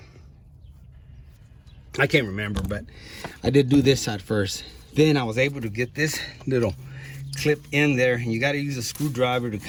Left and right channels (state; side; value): identical; both; correlation 1.00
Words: I can't remember, but I did do this side first. Then I was able to get this little clip in there, and you got to use a screwdriver to